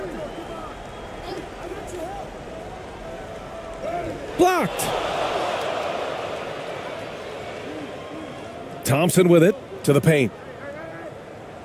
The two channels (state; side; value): identical; both; correlation 1.00